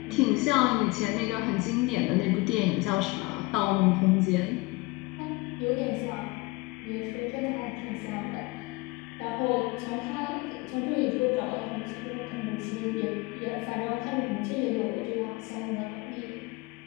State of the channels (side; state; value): right; quieter; 23.8 dB